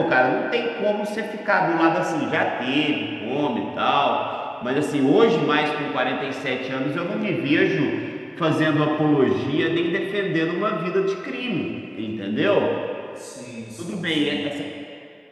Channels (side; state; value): both; identical; correlation 1.00